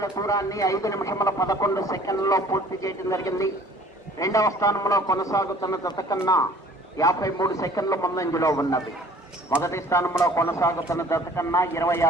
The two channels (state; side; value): normal; both; correlation 0.51